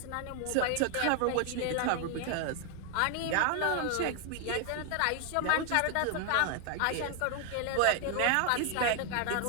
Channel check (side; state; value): both; different; correlation 0.00